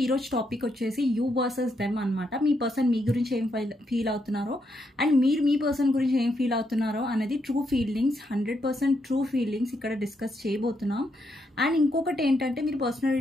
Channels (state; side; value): normal; both; correlation 0.79